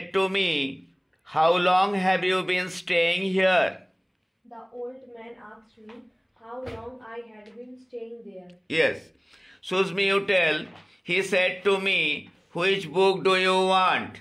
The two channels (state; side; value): identical; both; correlation 1.00